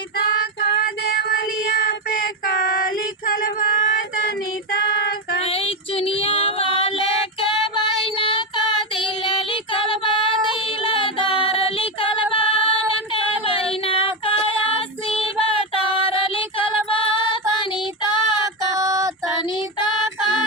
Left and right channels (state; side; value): normal; both; correlation 0.11